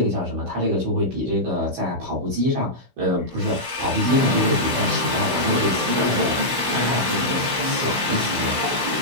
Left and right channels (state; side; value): late; left; 16 ms